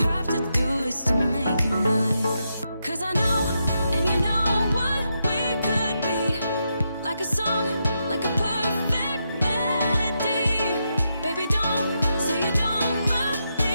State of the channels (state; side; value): inverted; both; correlation -0.83